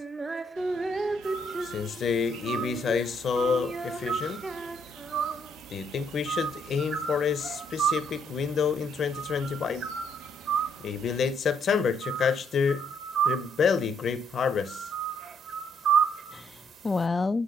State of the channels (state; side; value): normal; both; correlation 0.71